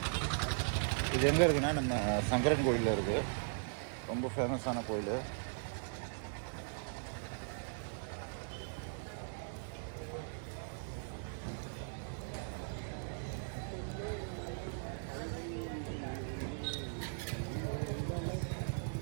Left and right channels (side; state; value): left; silent; digital silence